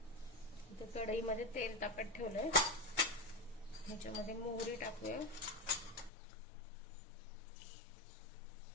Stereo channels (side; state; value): right; drops out; at 6.1 s